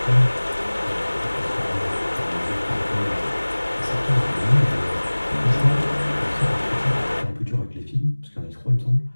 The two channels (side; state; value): both; inverted; correlation -1.00